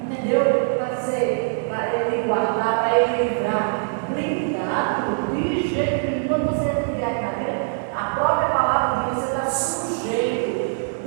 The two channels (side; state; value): left; silent; 64 dB below the other